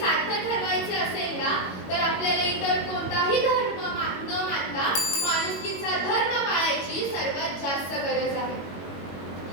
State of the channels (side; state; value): right; late; 21 ms